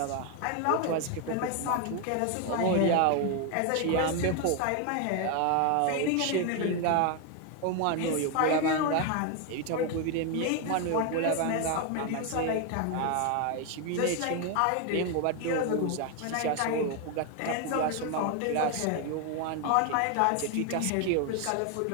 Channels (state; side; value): different; both; correlation 0.01